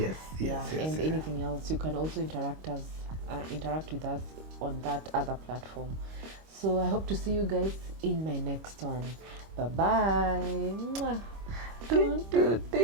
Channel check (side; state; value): left; late; 25 ms